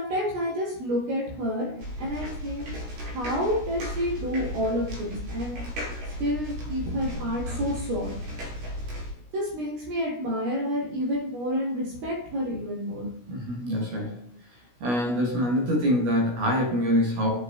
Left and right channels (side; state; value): left; late; 16 ms